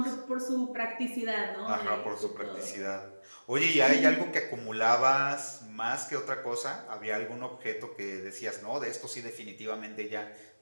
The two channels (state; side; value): inverted; both; correlation -1.00